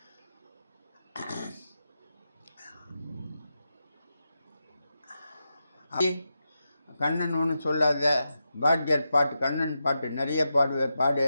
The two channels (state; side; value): inverted; both; correlation -0.88